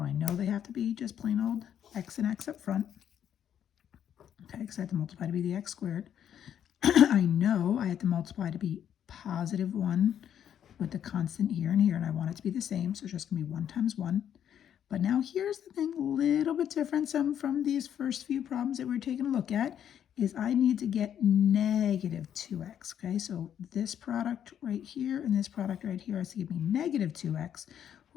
I know they have to be just plain old x and x up front, okay, because I have to multiply to be the x squared. I know I have to multiply to be positive 1 with the constant here and here, and I want it to be the same, so it's just going to be 1 times 1. But now here's the thing, a little bit different from these first few problems that we're taking a look at, is I need to get negative 2x, okay? So this product right here and this product right here has to give me negative 2x.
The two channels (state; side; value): quieter; right; 9.5 dB